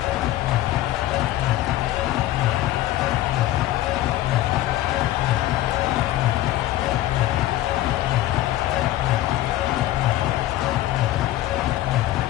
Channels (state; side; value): quieter; right; 14.7 dB